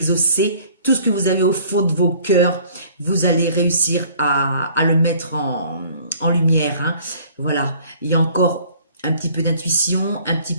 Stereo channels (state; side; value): inverted; both; correlation -0.54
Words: Tout ce que vous avez au fond de vos cœurs, vous allez réussir à le mettre en lumière, hein. Voilà, il y a encore un petit peu d'intuition, un petit